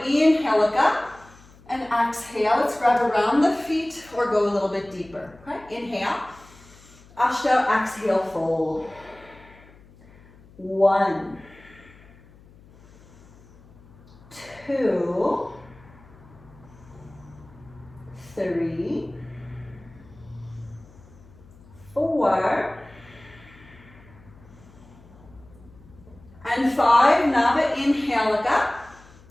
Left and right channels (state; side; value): noise; left; hum, 24 dB below the sound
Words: inhale, look up, and exhale. Let's grab around the feet or go a little bit deeper. Okay, inhale. Ashta, exhale, fold. 1, 2, 3, 4, and 5. Now inhale, look up,